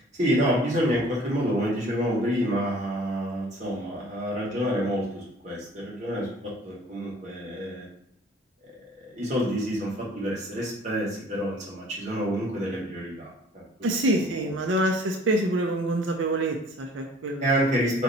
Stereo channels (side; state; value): both; normal; correlation 0.52